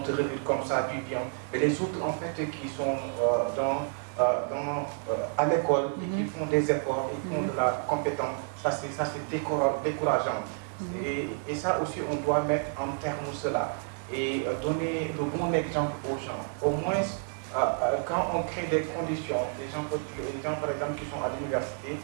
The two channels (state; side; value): silent; left; 58 dB below the other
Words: te révèle comme ça, puis bien. Mais les autres en fait qui sont à l'école et qui font des efforts, ils font de la compétence, ça c'est décourageant. Et ça aussi, on doit mettre en terme cela et donner le bon exemple aux gens. Au moins, quand on crée des conditions, les gens par exemple qui sont à l'université,